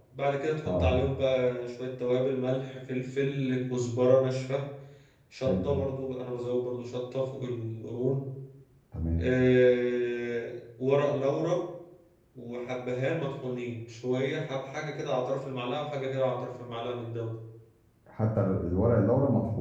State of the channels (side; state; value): both; identical; correlation 1.00